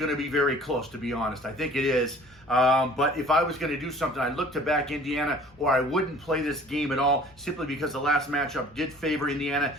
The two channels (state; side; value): normal; both; correlation 0.50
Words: to be very close, to be honest. I think it is. But if I was going to do something, I'd look to back Indiana, or I wouldn't play this game at all, simply because the last matchup did favor Indiana.